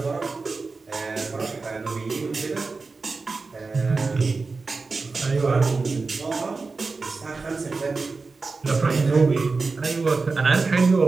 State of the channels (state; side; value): quieter; left; 4.1 dB